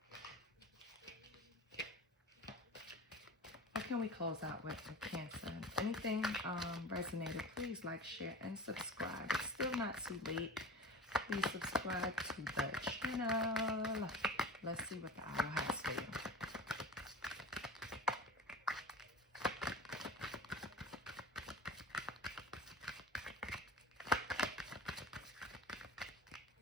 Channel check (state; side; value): normal; both; correlation 0.35